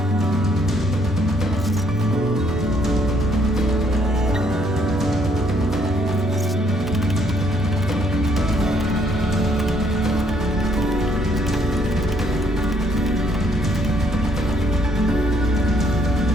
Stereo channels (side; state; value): both; normal; correlation 0.68